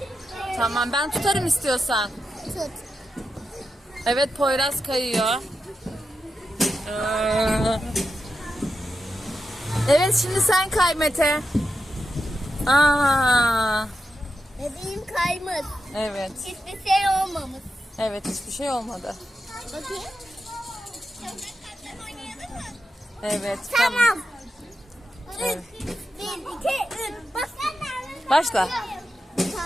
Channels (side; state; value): both; normal; correlation 0.88